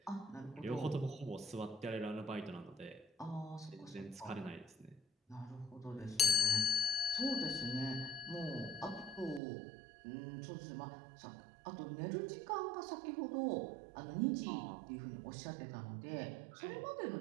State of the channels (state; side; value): drops out; left; at 9.4 s